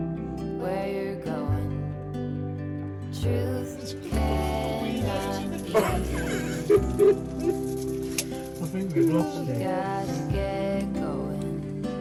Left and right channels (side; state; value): both; identical; correlation 1.00